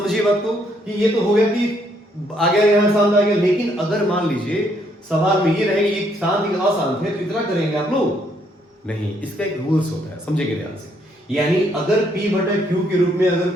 बात को कि ये तो हो गया कि आ गया यहाँ शांत आ गया, लेकिन अगर मान लीजिए सवाल में ये रहेगा ये शांत या अशांत है, तो इतना करेंगे आप लोग नहीं। इसका एक रूल्स होता है, समझेंगे ध्यान से। यानी अगर P बटा Q के रूप में अगर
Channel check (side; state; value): both; normal; correlation 0.71